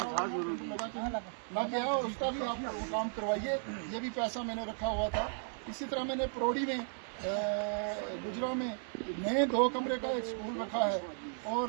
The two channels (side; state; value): left; silent; digital silence